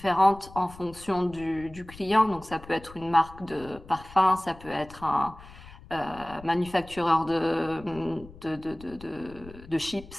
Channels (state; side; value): noise; left; rumble, 19 dB below the sound